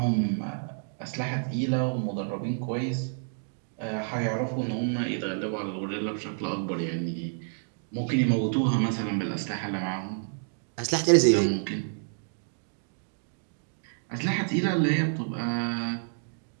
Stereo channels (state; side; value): silent; left; digital silence